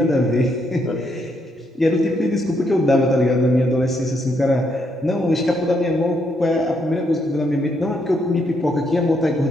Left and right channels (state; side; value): normal; both; correlation 0.76